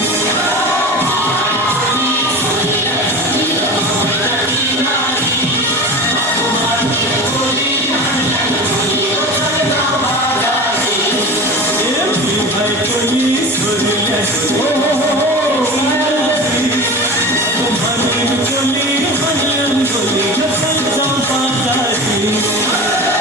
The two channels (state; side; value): normal; both; correlation 0.31